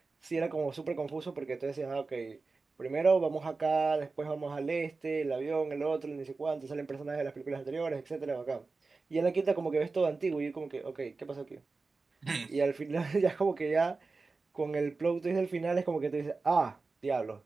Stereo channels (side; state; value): left; quieter; 4.0 dB